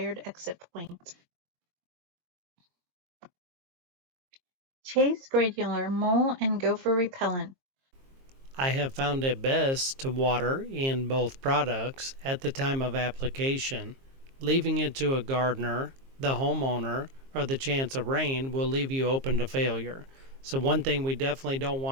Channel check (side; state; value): left; late; 22 ms